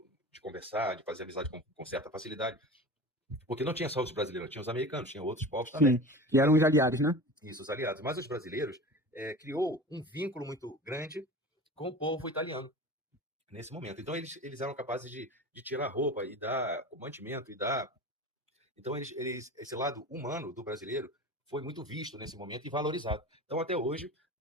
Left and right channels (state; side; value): normal; both; correlation 0.34